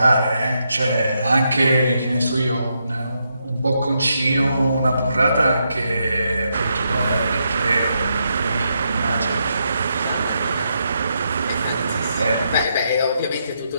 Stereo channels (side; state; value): both; inverted; correlation -0.81